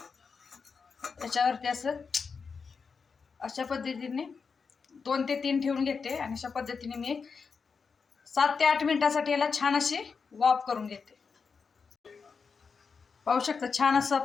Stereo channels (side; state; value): right; quieter; 5.4 dB